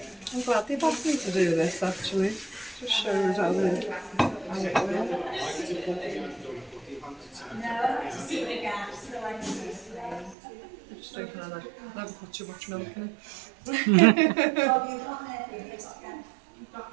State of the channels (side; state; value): left; drops out; at 10.4 s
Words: I'm glad they've asked me to do this actually. Just shows how it works. No, to see the gaps, so I can see the flame. Just taking on that. Never put too much milk in it. Oh, you've got it, you've got gas. You've